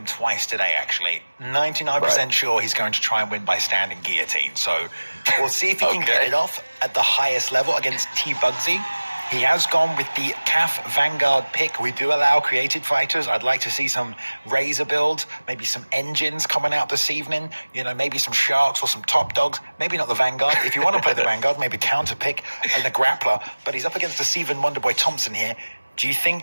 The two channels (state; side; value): inverted; both; correlation -1.00